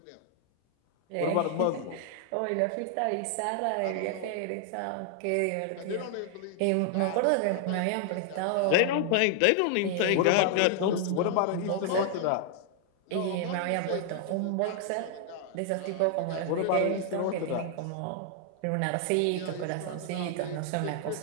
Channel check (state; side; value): different; both; correlation 0.00